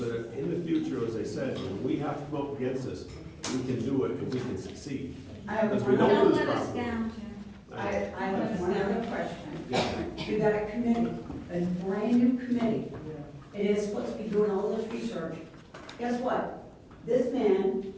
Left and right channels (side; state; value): both; identical; correlation 1.00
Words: that in the future, as I said, when we have to come up against this, we can do it and we can succeed. Because we don't Don't lose let us property. down, Jim. I have one other question. Yeah. You got a committee, a brand new committee. It is supposed to be doing all this research. Guess what? This man